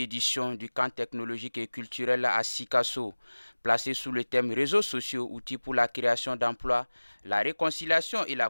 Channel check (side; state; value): both; inverted; correlation -1.00